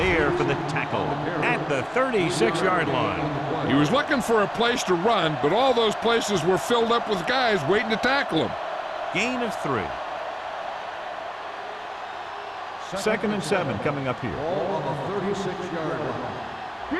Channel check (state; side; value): identical; both; correlation 1.00